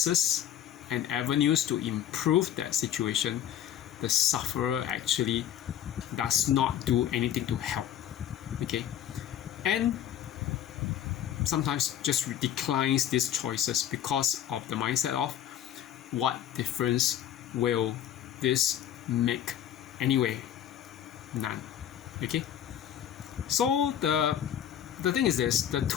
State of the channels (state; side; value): quieter; right; 10.6 dB